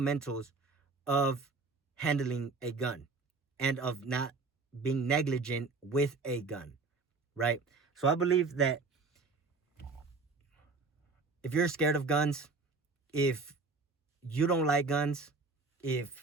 of handling a gun and of not being negligent with a gun, right? So I believe that if you're scared of guns, if you don't like guns,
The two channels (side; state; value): left; quieter; 4.0 dB